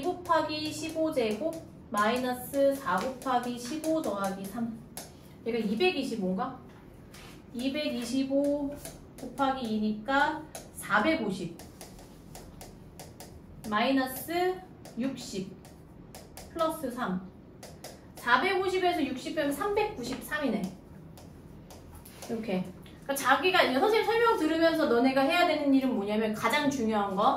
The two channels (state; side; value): identical; both; correlation 1.00